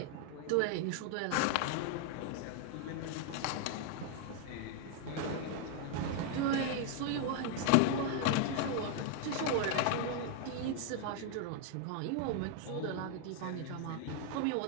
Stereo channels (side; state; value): both; different; correlation 0.00